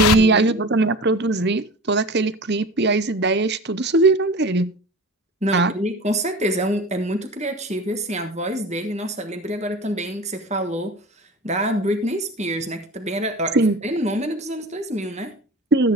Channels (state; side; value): normal; both; correlation 0.35